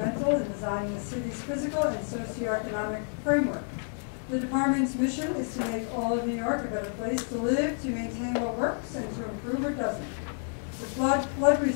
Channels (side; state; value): right; silent; 58 dB below the other